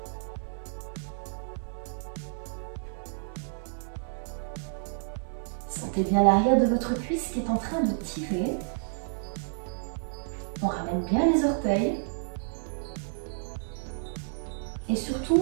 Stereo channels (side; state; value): left; silent; 58 dB below the other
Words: Sentez bien l'arrière de votre cuisse qui est en train de tirer. On ramène bien les orteils. Et